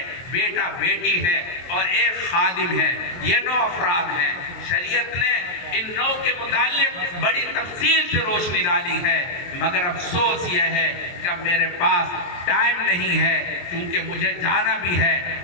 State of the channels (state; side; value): late; right; 23 ms